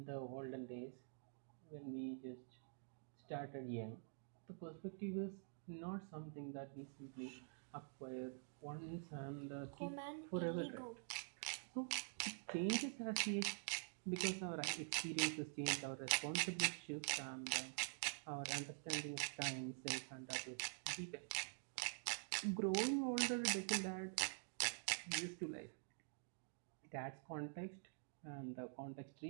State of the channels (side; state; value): left; silent; digital silence